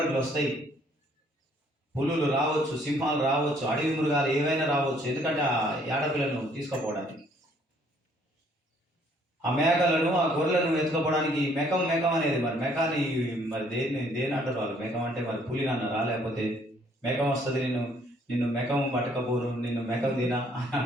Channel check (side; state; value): both; normal; correlation 0.63